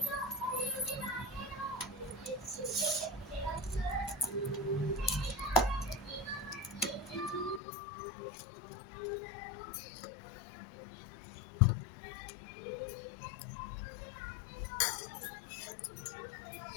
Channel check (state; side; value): drops out; right; at 7.6 s